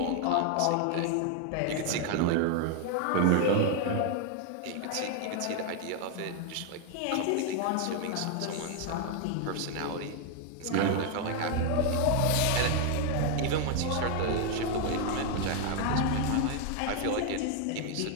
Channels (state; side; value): different; both; correlation 0.01